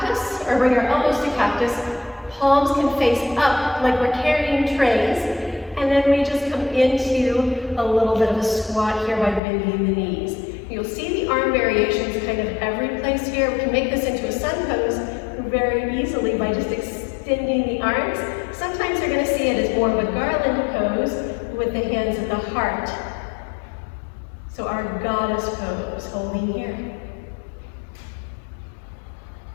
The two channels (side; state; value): right; drops out; at 9.4 s